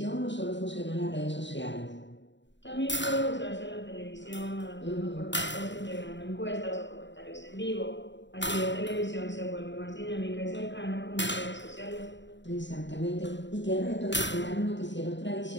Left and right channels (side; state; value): right; late; 0.53 ms